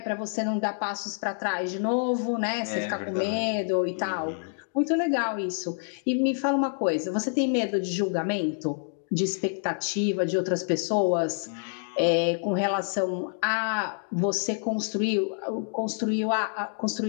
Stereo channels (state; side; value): silent; right; digital silence